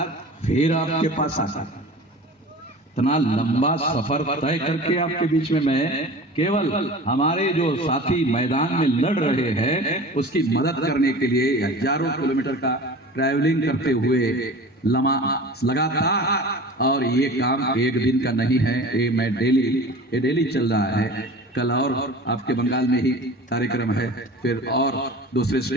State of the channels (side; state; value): both; normal; correlation 0.38